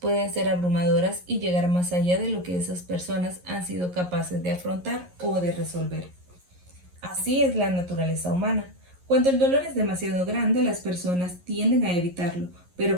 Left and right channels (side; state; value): left; late; 11 ms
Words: ser abrumadoras y llegar más allá de lo que esas personas han sido capaces de afrontar o de resolver. Así es la naturaleza humana. Cuando el dolor es demasiado grande, las personas tienden a evitarlo,